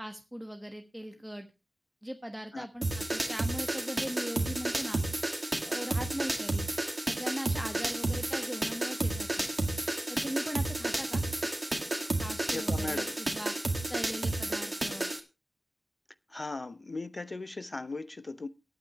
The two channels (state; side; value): normal; both; correlation 0.97